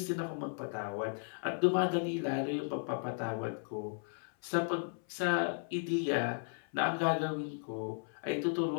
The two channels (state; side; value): silent; right; 54 dB below the other